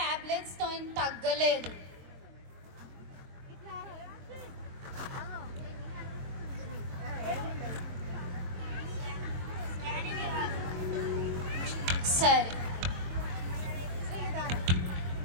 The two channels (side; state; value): left; late; 22 ms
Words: తో తగ్గలేదు. సరే.